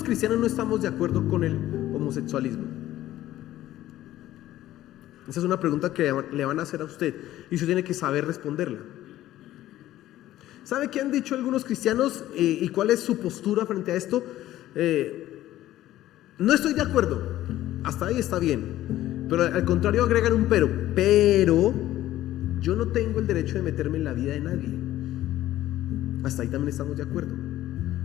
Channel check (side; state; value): right; quieter; 14.2 dB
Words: cristianos no estamos de acuerdo con el homosexualismo? Esa es una pregunta que le van a hacer a usted y usted tiene que saber responderla. ¿Sabe qué han dicho algunos cristianos y cuál es su postura frente a esto? No estoy de acuerdo, hasta ahí está bien, pero al contrario agregan un pero yo no tengo el derecho de meterme en la vida de nadie. Hasta ahí también estamos de acuerdo.